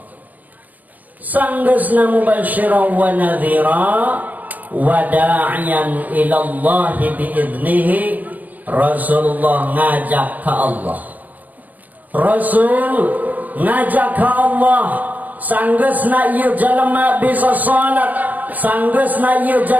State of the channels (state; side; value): late; left; 0.080 ms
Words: Sanggeusna mubasysyiran wa nadhira wa da'iyan ila Allah bi'idnihi, Rasulullah ngajak ka Allah. Rasul ngajak ka Allah. Sanggeusna ieu jalema bisa salat, sanggeusna ieu